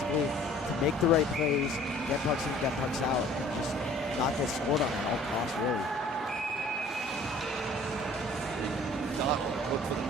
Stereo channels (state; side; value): normal; both; correlation 0.52